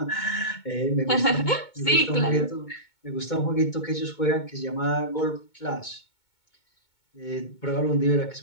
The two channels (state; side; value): late; right; 2.2 ms